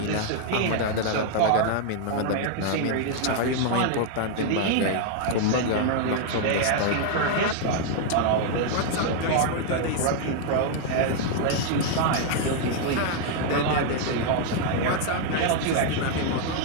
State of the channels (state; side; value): different; both; correlation 0.00